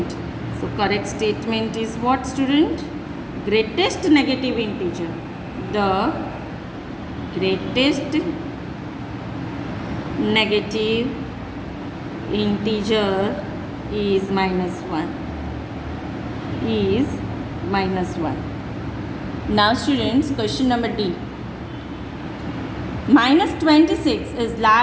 So correct statement is what, student? Greatest negative integer. The greatest negative integer is minus 1. Is minus 1. Now students, question number D. Minus 26 is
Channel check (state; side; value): identical; both; correlation 1.00